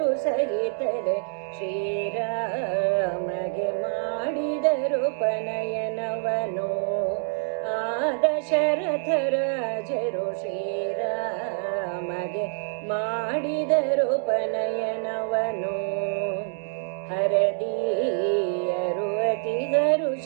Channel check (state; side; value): silent; left; digital silence